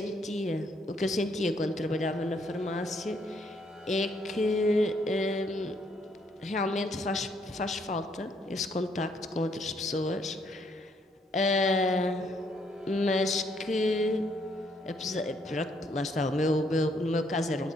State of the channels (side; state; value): both; normal; correlation 0.70